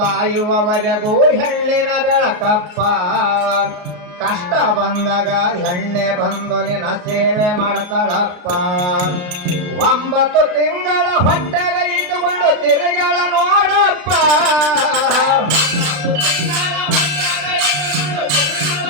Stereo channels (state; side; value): late; left; 34 ms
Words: ಹೆಣ್ಣಿನ ಬೆಳಕಪ್ಪ. ಕಷ್ಟ ಬಂದಾಗ ಹೆಣ್ಣೆ ಬಂದು ನಿನ್ನ ಸೇವೆ ಮಾಡ್ತಾಳಪ್ಪ. 9 ತಿಂಗಳ ಹೊಟ್ಟೆಗ ಇಟ್ಟುಕೊಂಡು ತಿರುಗಳ ನೋಡಪ್ಪ.